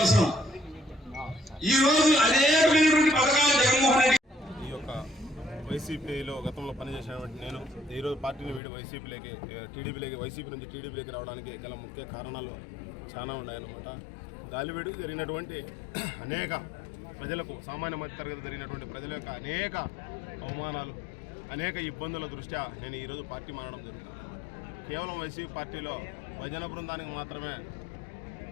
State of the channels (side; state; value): right; drops out; at 8.6 s